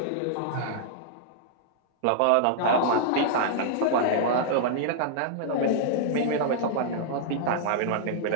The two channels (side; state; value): both; different; correlation -0.01